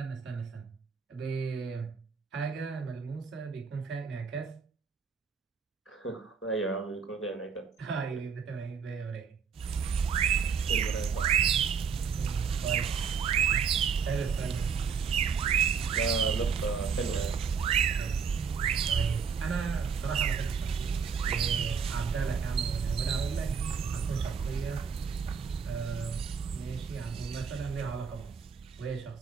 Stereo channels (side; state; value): left; quieter; 6.2 dB